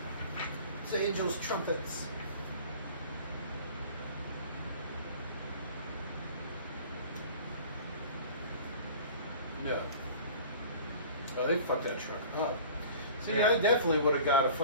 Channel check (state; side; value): inverted; both; correlation -0.43